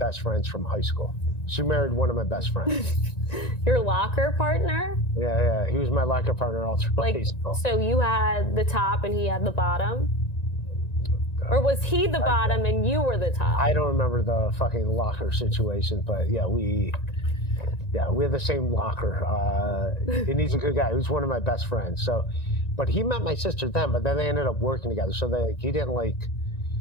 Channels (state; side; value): late; right; 1.9 ms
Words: friends from high school. She married one of my best friends. Your locker partner? Yeah, he was my locker partner all through high school. So you had the top and he had the bottom? Or was he the bottom and you were the top? I don't remember the fucking locker situation, but yeah, we have the same locker. And he's a good guy. He was one of my best friends. So, but he met my sister then, but then they ended up working together. So